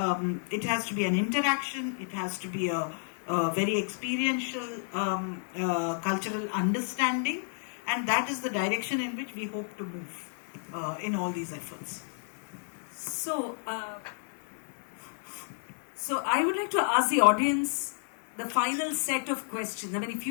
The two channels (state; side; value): silent; right; digital silence